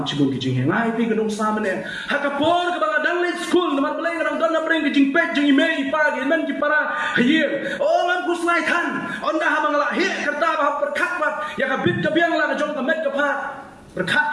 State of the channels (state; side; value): identical; both; correlation 1.00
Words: chibun ki jingye ngai pi kadang samane hakapor kabang dang le school naman balay kadang don na preng ki jingpet jing email pagi men ki para hier oh man kuslai than onda habang la he kerta ba perkat bat ya ka bit ka biang la ka jong ka met ka phat perkat